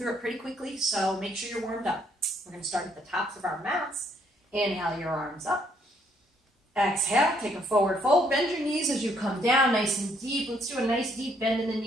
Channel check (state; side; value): normal; both; correlation 0.69